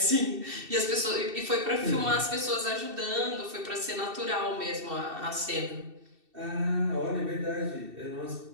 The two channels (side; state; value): left; late; 2.7 ms